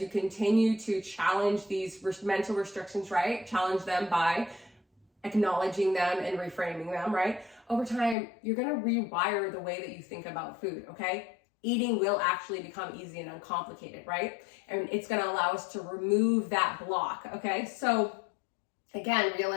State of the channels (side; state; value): right; drops out; at 8.2 s